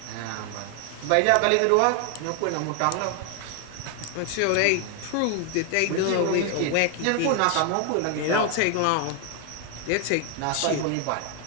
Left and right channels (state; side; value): different; both; correlation 0.01